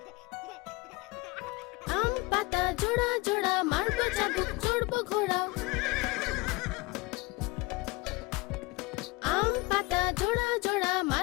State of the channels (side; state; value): right; quieter; 23.8 dB